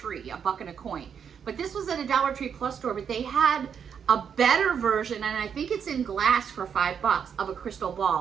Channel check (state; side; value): quieter; left; 7.4 dB